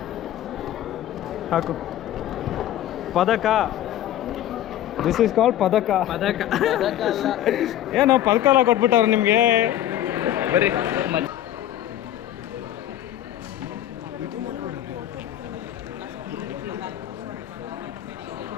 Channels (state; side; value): quieter; right; 12.3 dB